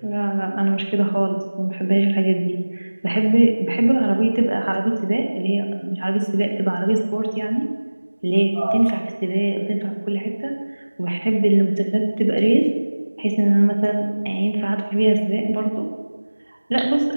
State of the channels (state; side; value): inverted; both; correlation -1.00